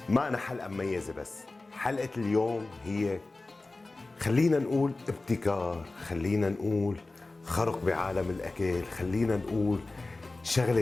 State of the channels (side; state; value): right; quieter; 3.2 dB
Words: ما أنا حلقه مميزه، بس حلقه اليوم هي خلينا نقول ابتكار، خلينا نقول خرق بعالم الاكل، خلينا نقول شغله